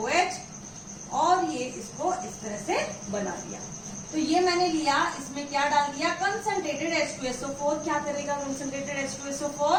और ये इसको इस तरह से बना दिया। तो ये मैंने लिया, इसमें क्या डाल दिया? Concentrated H2SO4। क्या करेगा कंसंट्रेटेड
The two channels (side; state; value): both; identical; correlation 1.00